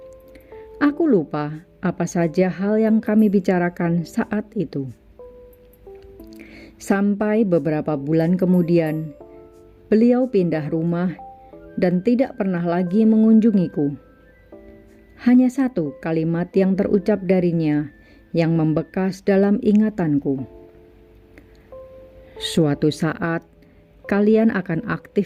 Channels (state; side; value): identical; both; correlation 1.00